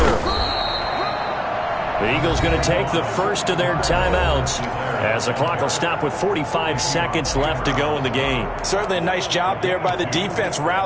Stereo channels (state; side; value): identical; both; correlation 1.00